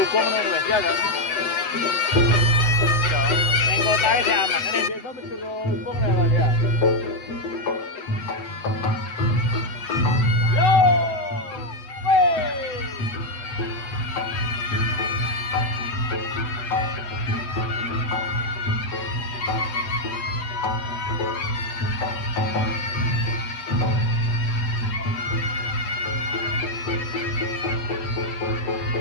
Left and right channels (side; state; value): right; late; 8.0 ms